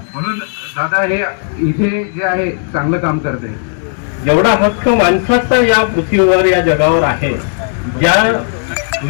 म्हणून दादा हे इथे जे आहे चांगलं काम करते। एवढा हक्क माणसाचा या पृथ्वीवर या जगावर आहे, ज्या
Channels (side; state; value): right; silent; 61 dB below the other